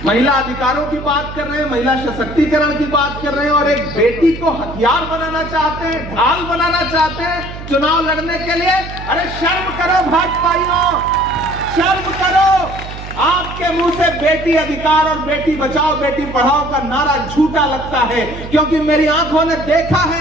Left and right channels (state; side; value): noise; right; hum, 11 dB below the sound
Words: महिला अधिकारों की बात कर रहे हैं, महिला सशक्तिकरण की बात कर रहे हैं और एक बेटी को हथियार बनाना चाहते हैं, ढाल बनाना चाहते हैं चुनाव लड़ने के लिए। अरे शर्म करो भाजपाइयों, शर्म करो। आपके मुंह से बेटी अधिकार और बेटी बचाओ, बेटी पढ़ाओ का नारा झूठा लगता है, क्योंकि मेरी आंखों ने देखा